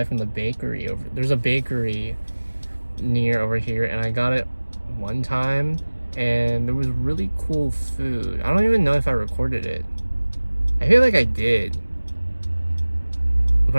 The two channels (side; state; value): both; inverted; correlation -1.00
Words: from the bakery over. There's a bakery near over here, and I got it one time, and there was really cool food. I don't even know if I recorded it. I feel like I did,